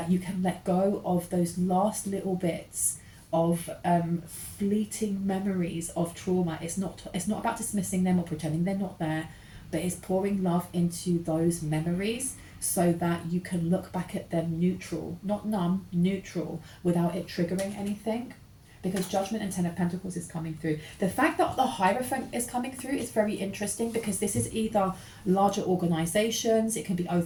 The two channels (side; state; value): both; identical; correlation 1.00